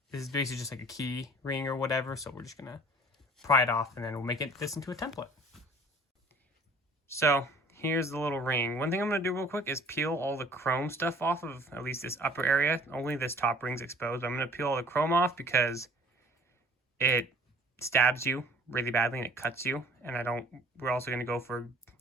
this is basically just like a key ring or whatever. So we're just gonna pry it off, and then we'll make this into a template. So here's the little ring. One thing I'm going to do real quick is peel all the chrome stuff off of at least this upper area. Only this top ring's exposed, but I'm going to peel all the chrome off because it stabs you really badly and it cuts you. And we're also going to go for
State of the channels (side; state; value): both; normal; correlation 0.51